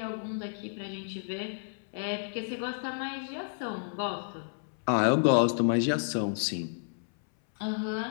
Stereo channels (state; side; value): silent; right; 57 dB below the other